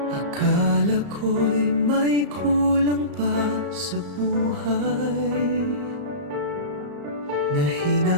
Akala ko'y may kulang pa sa buhay na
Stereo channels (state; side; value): late; left; 34 ms